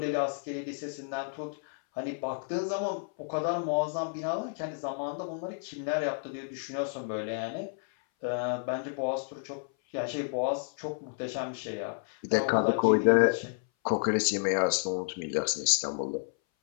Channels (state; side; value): silent; right; 57 dB below the other